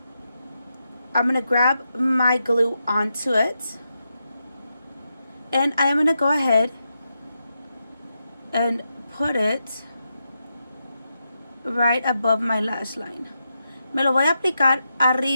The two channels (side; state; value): both; inverted; correlation -0.86